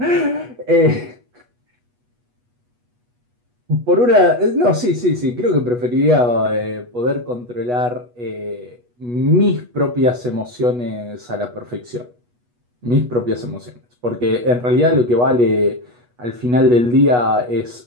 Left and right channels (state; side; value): late; left; 8.2 ms